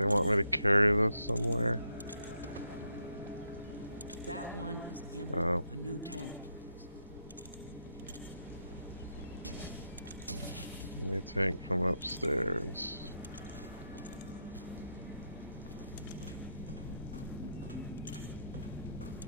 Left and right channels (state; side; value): inverted; both; correlation -0.79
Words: want me to carry this somewhere? That one is empty. Oh. A new tank, please. New tank from upstairs.